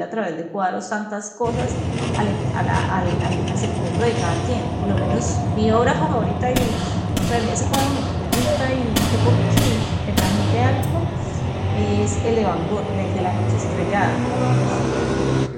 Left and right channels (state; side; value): identical; both; correlation 1.00